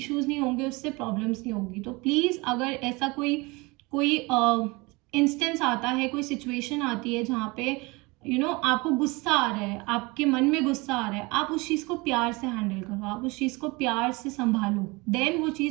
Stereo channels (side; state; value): left; quieter; 25.2 dB